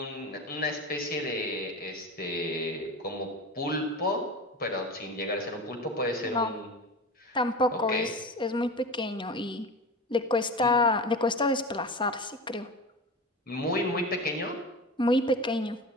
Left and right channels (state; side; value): normal; both; correlation 0.29